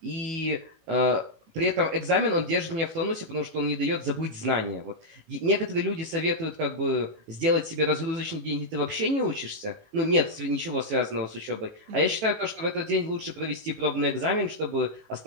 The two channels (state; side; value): late; left; 18 ms